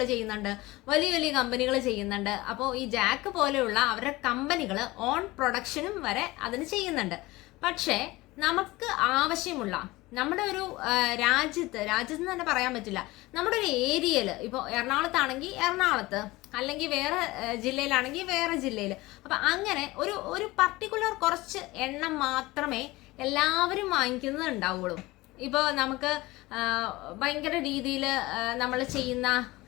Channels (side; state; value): right; quieter; 20.3 dB